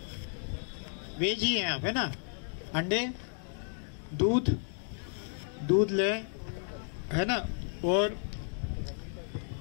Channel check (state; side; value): silent; right; 56 dB below the other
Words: वेज ही हैं आप, है ना? अंडे, दूध ले, है ना? और